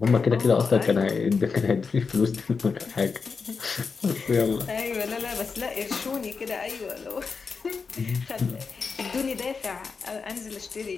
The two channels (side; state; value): right; quieter; 5.1 dB